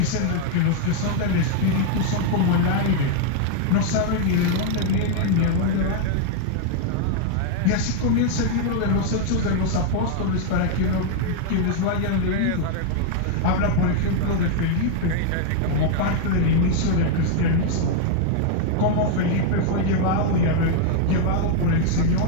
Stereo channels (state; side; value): different; both; correlation 0.00